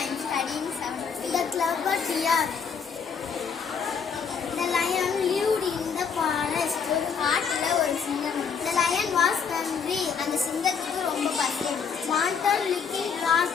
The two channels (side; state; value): right; quieter; 6.4 dB